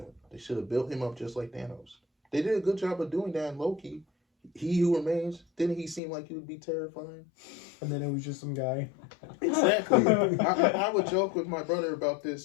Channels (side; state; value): right; drops out; at 6.0 s